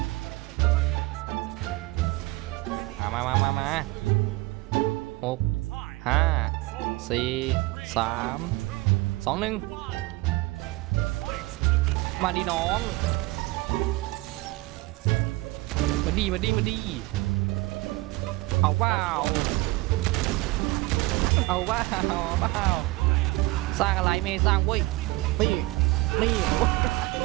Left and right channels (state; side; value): quieter; left; 21.1 dB